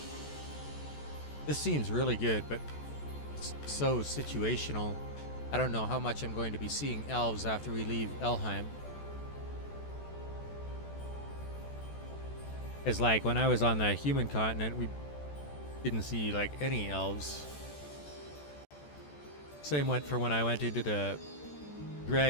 This seems really good, but it's so situational. I don't know how much I'm going to be seeing elves after we leave Elheim. It's like when I was on the human continent, we didn't see like any elves. Same went for when I went into the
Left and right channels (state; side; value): late; right; 14 ms